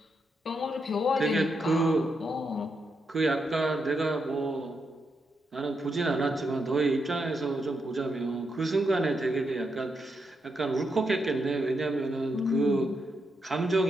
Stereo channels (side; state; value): both; normal; correlation 0.82